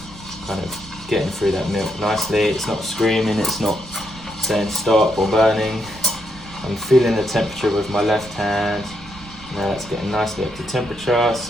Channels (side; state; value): right; noise; rumble, 19 dB below the sound